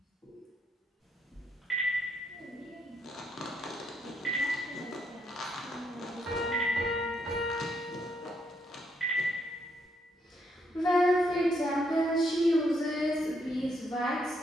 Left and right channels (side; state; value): both; normal; correlation 0.76